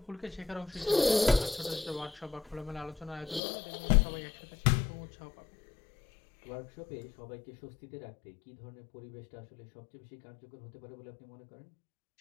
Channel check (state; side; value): drops out; right; at 3.4 s